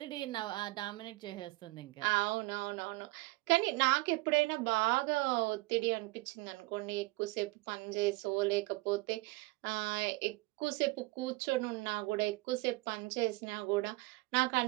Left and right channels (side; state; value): left; quieter; 23.2 dB